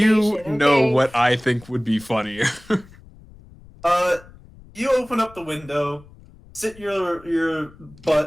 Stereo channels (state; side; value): noise; left; rumble, 23 dB below the sound